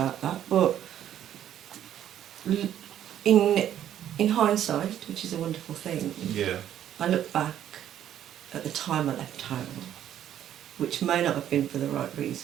that. But in hindsight, which is a wonderful thing, I look back at the time I left home, which may not have been for the right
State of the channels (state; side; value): quieter; left; 10.9 dB